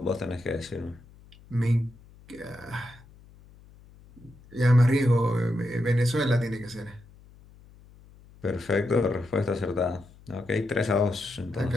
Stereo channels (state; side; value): noise; left; hum, 24 dB below the sound